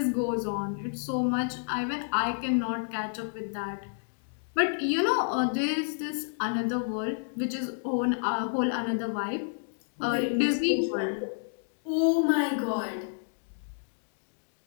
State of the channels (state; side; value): silent; right; digital silence